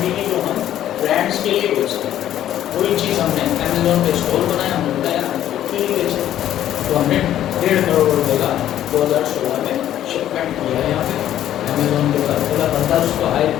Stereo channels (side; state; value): right; quieter; 11.8 dB